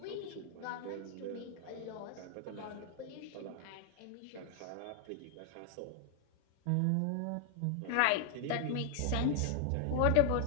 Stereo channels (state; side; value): different; both; correlation 0.00